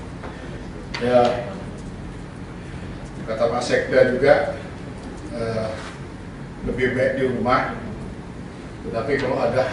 Ya, kata Pak Sekda juga lebih baik di rumah. Tetapi kalau ada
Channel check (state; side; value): identical; both; correlation 1.00